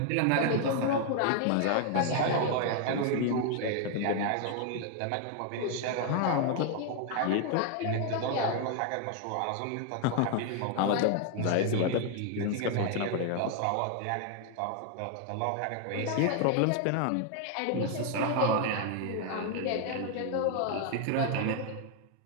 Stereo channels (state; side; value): different; both; correlation 0.00